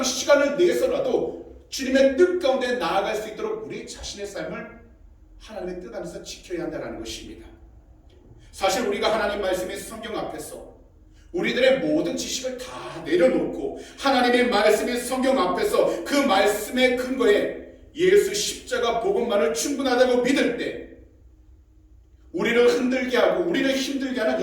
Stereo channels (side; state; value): both; identical; correlation 1.00